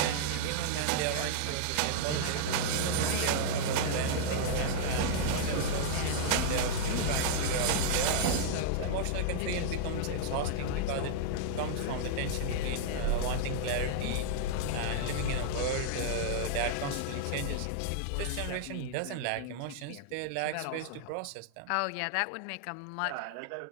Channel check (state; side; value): different; both; correlation -0.01